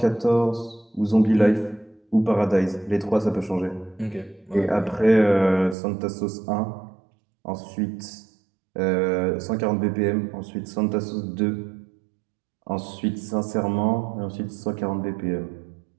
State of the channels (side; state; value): left; drops out; at 5.8 s